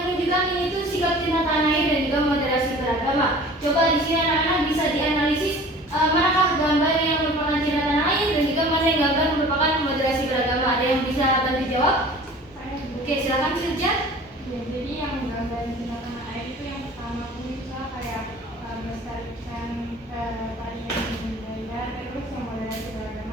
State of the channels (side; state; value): both; normal; correlation 0.44